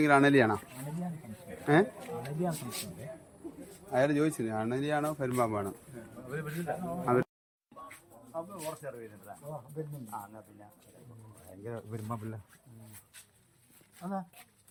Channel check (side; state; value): both; identical; correlation 1.00